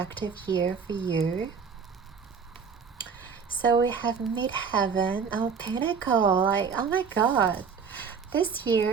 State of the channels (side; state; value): left; quieter; 6.1 dB